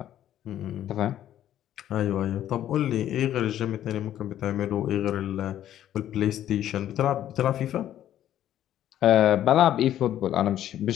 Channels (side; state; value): right; quieter; 11.7 dB